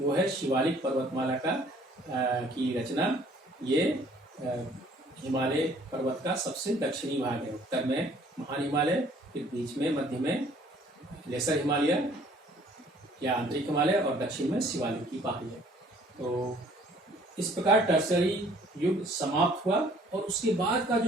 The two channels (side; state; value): both; normal; correlation 0.57